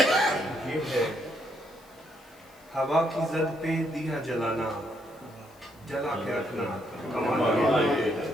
یہ ہے. ہوا کی زد پہ دیا جلانا جلا کے رکھنا کمال یہ ہے.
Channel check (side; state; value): left; noise; hiss, 28 dB below the sound